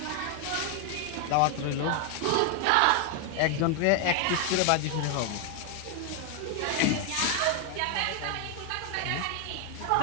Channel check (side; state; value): both; different; correlation 0.01